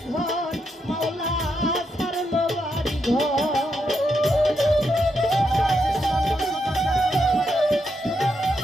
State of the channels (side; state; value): both; normal; correlation 0.81